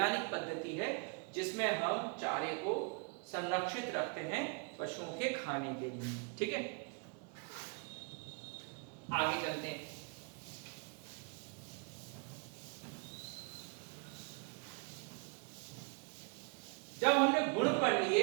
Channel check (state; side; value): quieter; left; 35.5 dB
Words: पद्धति है जिसमें हम चारे को संरक्षित रखते हैं पशुओं के खाने के लिए। ठीक है। आगे चलते हैं। जब हमने गुण पढ़